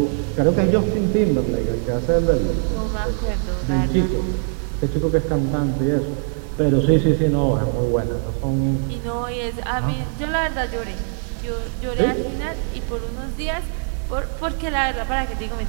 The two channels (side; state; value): left; silent; 64 dB below the other